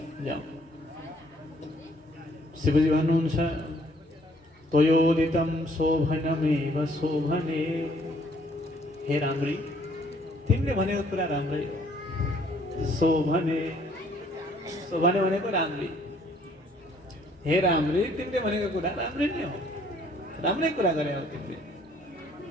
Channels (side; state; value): both; normal; correlation 0.63